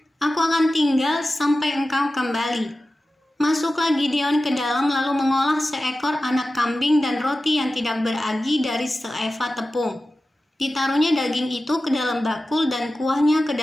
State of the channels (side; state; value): both; normal; correlation 0.94